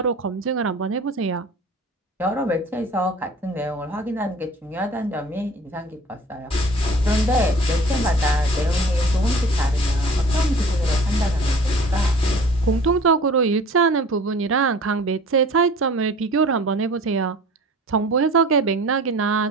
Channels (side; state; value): both; normal; correlation 0.45